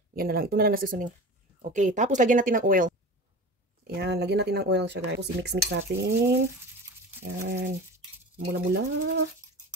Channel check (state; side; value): normal; both; correlation 0.33